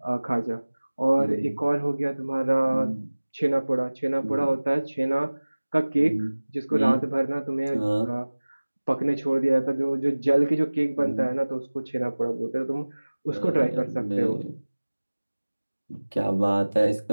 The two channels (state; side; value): inverted; both; correlation -1.00